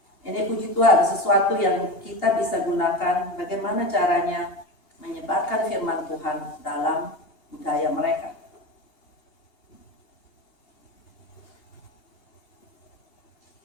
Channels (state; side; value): late; right; 2.8 ms